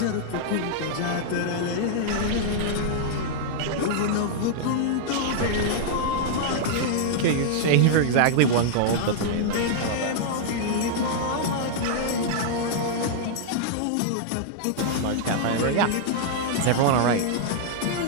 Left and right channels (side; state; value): both; different; correlation -0.01